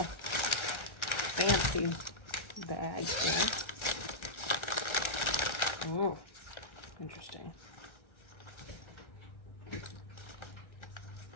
fancy bag here. Oh, interesting.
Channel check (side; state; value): right; late; 1.3 ms